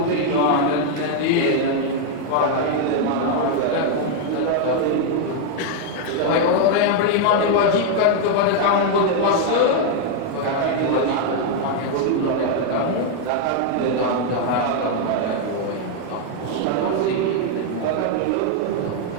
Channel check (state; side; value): different; both; correlation 0.00